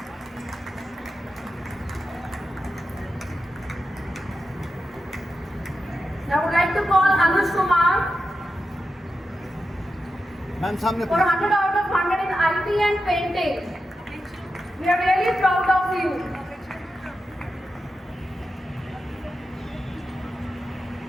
I would like to call Anush Kumar. Ma'am सामने for 100 out of 100 in IT and painting. We are really proud of you.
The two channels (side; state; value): both; normal; correlation 0.90